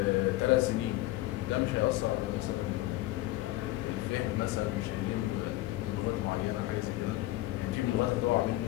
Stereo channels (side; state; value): right; quieter; 17.5 dB